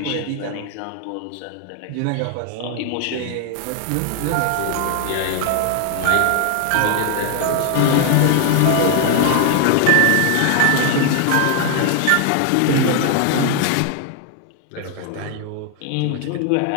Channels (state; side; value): different; both; correlation 0.00